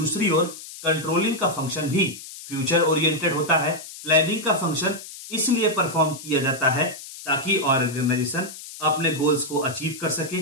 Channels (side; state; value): left; noise; hiss, 14 dB below the sound